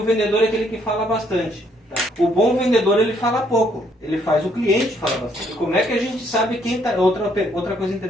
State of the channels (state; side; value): normal; both; correlation 0.69